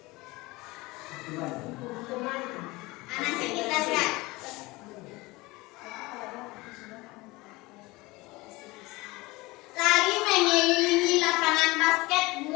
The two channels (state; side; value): quieter; right; 22.0 dB